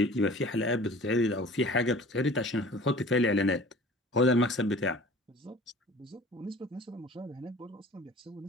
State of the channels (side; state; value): both; normal; correlation 0.45